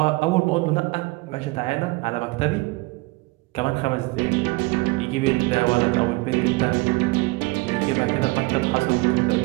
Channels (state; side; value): quieter; left; 23.5 dB